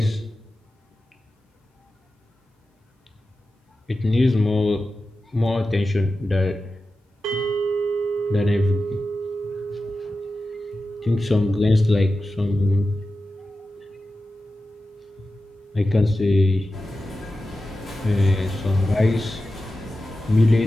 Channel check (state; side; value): normal; both; correlation 0.93